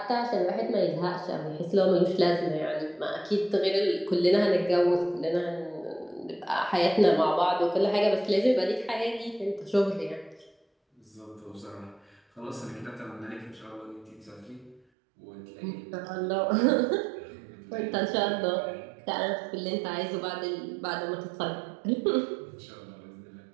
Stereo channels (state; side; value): drops out; left; at 14.8 s